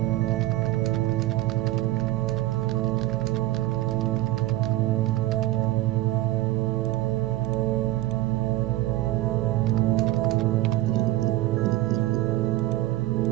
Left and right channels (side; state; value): left; quieter; 16.5 dB